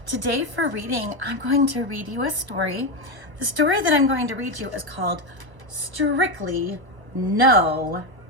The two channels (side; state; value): left; late; 1.0 ms